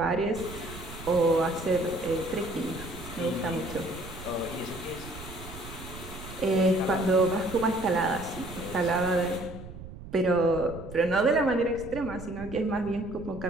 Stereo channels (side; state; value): right; noise; rumble, 13 dB below the sound